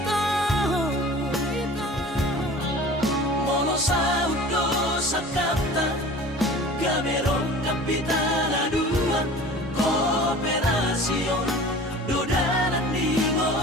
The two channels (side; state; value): both; normal; correlation 0.41